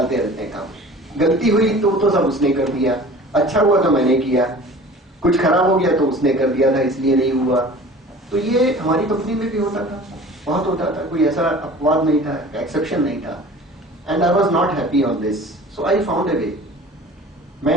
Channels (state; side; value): normal; both; correlation 0.43